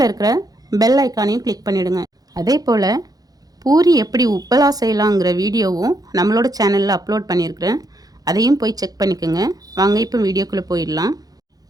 இருக்கிற பெல் ஐக்கானையும் கிளிக் பண்ணிவிடுங்க. அதே போல் பூரி எப்படி உப்பலா செய்யலாங்கிற வீடியோவும் நம்மளோட சேனலில் அப்லோட் பண்ணியிருக்கிறேன். அதையும் போய் செக் பண்ணிக்கோங்க. வாங்க இப்போ வீடியோக்குள்ளே போயிடலாம்.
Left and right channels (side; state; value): left; late; 0.18 ms